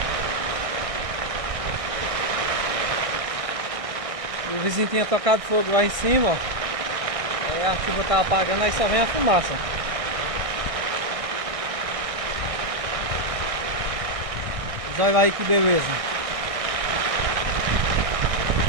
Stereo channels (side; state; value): left; late; 1.6 ms